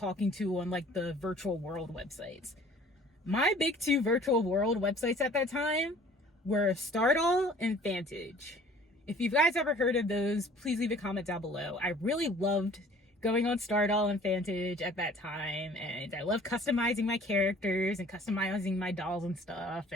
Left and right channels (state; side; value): normal; both; correlation 0.51